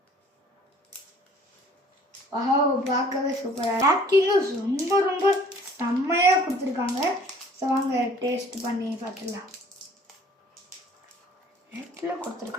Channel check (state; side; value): normal; both; correlation 0.54